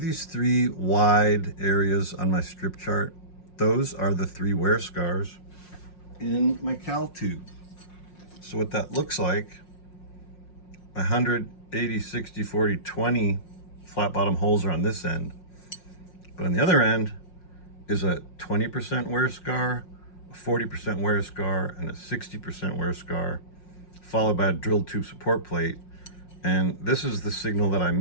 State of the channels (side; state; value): right; late; 5.6 ms